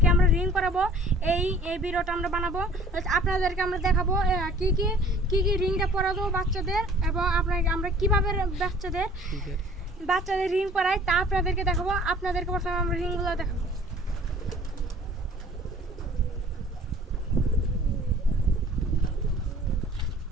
আমরা রিং করাবো। এই ভিডিওটা আমরা বানাবো। আপনাদেরকে আমরা দেখাবো কি কি রিংটা পরাবো বাচ্চাদের, এবং আমরা কিভাবে বাচ্চাদের রিং পরাই তা আপনাদেরকে দেখাবো। আপনাদেরকে প্রথমে আমরা রিংগুলো দেখাবো।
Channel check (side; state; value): both; normal; correlation 0.50